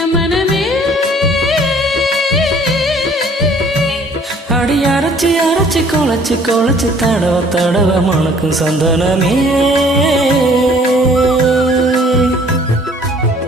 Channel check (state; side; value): normal; both; correlation 0.56